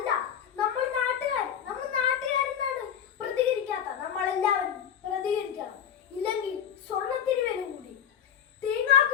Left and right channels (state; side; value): quieter; right; 8.9 dB